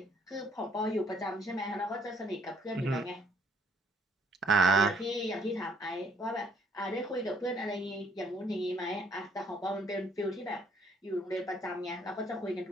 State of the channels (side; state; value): both; normal; correlation 0.64